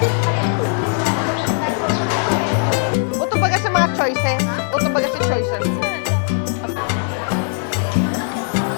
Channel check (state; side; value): silent; right; 66 dB below the other